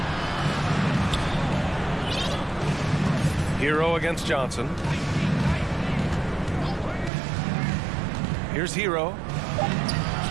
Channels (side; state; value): left; drops out; at 7.1 s